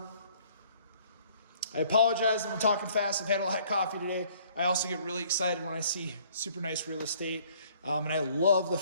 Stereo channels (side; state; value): both; inverted; correlation -0.59